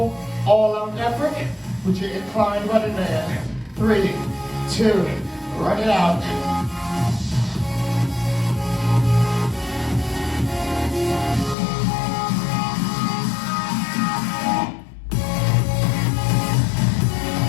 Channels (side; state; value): right; drops out; at 11.6 s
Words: All-out effort with your inclined running man. 3, 2, run it out.